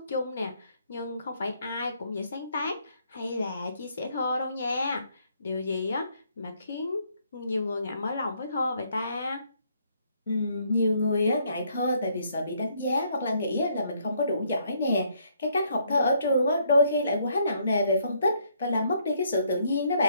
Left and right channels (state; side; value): inverted; both; correlation -0.69